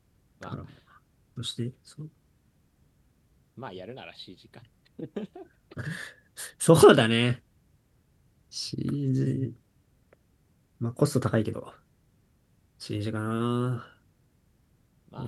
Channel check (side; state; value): both; identical; correlation 1.00